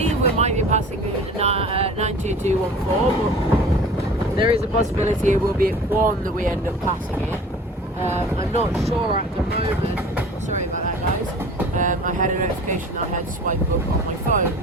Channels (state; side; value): normal; both; correlation 0.43